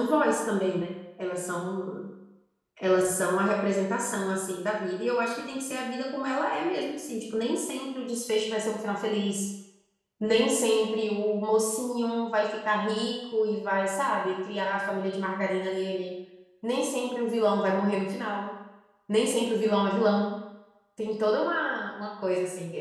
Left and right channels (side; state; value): both; identical; correlation 1.00